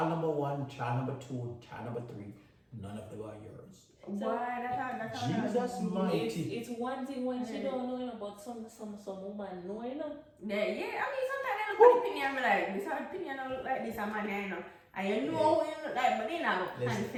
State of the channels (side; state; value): both; identical; correlation 1.00